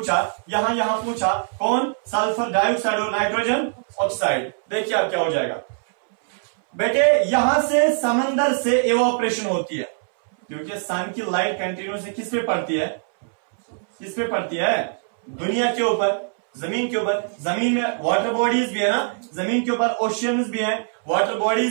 यहां पूछा कौन, सल्फर डाइऑक्साइड और नाइट्रोजन ऑक्साइड। देखिए अब क्या हो जाएगा बेटे, यहां से समंदर से इवोपरेशन होती है, क्योंकि सन की लाइट कंटिन्यूसली किस पे पड़ती है, किस पे पड़ती है, दुनिया के ऊपर, जमीन के ऊपर। जमीन में वाटर बॉडीज भी है ना, जमीन के ऊपर ओशियंस भी हैं, वाटर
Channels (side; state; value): left; silent; 64 dB below the other